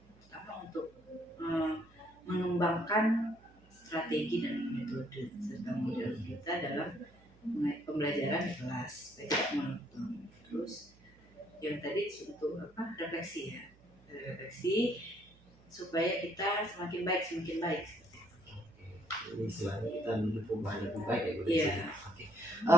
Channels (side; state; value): right; noise; hum, 26 dB below the sound